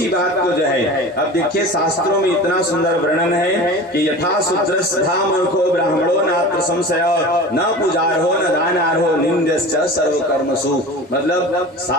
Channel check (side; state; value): both; normal; correlation 0.35